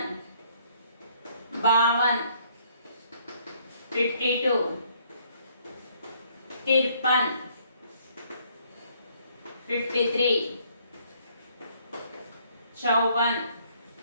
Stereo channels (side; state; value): both; inverted; correlation -0.65